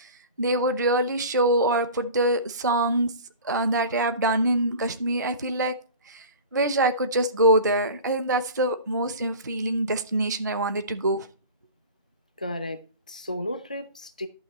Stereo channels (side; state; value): both; inverted; correlation -0.37